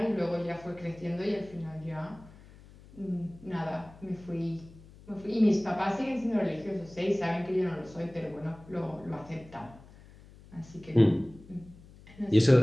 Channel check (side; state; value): left; noise; hum, 21 dB below the sound